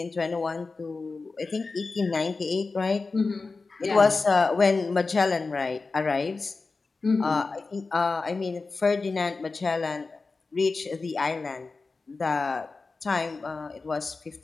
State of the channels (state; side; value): quieter; right; 4.0 dB